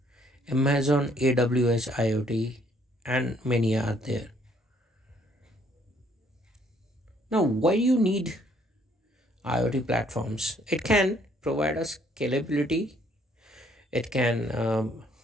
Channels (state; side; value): normal; both; correlation 0.65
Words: Amazon AWS IoT, and many are there. Now, why do you need IoT platforms? It can provide us scalability. It